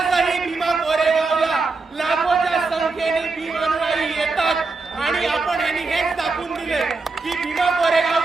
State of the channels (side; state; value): left; quieter; 3.9 dB